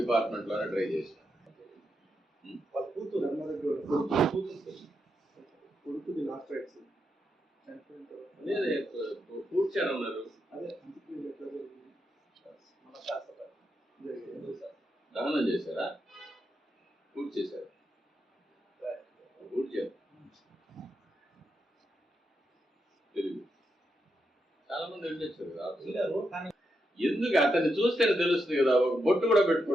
డిపార్ట్మెంట్ లోనే ట్రై చేశాను. కూర్చారన్నారు, దహనం చేశారా? పూర్తి చేశారు, పూర్తి చేశారు. తెలియదు, చాలా మంది వెళ్ళొచ్చారు కదా. ఎందుకు అతన్ని చూస్తేనే తెలుస్తుంది కదా. ఒక బొట్టు కూడా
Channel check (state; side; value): normal; both; correlation 0.84